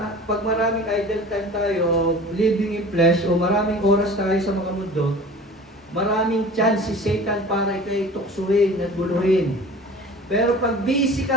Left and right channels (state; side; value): normal; both; correlation 0.41